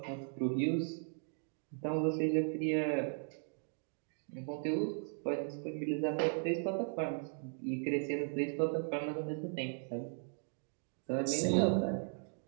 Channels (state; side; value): silent; left; 53 dB below the other